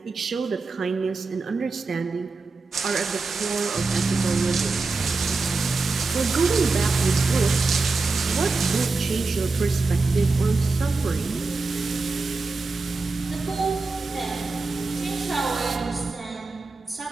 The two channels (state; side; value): quieter; left; 3.8 dB